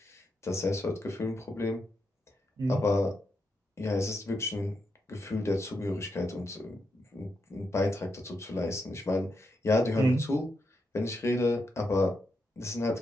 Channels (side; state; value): both; normal; correlation 0.83